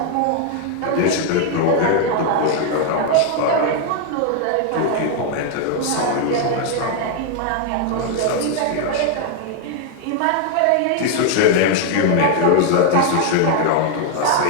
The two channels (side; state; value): both; different; correlation 0.00